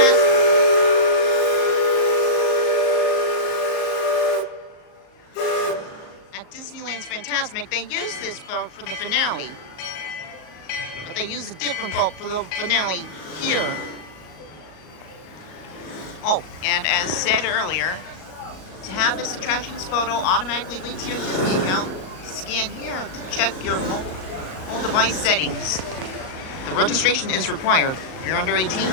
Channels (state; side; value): late; right; 38 ms